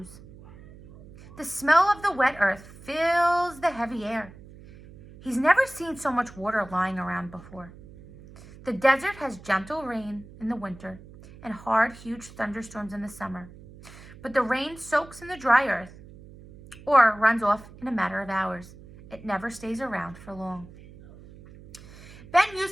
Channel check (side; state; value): right; noise; hum, 19 dB below the sound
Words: The smell of the wet earth fills the heavy air. He's never seen so much water lying around before. The desert has gentle rain in the winter and hard, huge thunderstorms in the summer. But the rain soaks in the dry earth or runs off in a matter of hours. It never stays around for long. Ben